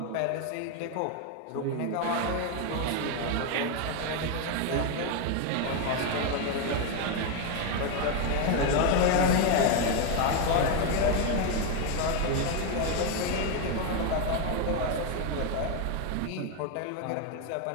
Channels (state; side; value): different; both; correlation 0.01